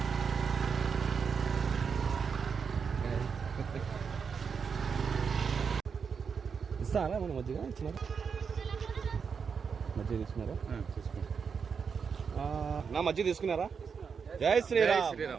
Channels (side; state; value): left; quieter; 6.1 dB